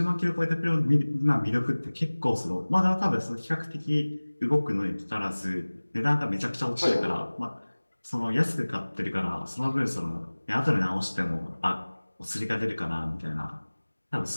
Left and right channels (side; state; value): both; inverted; correlation -1.00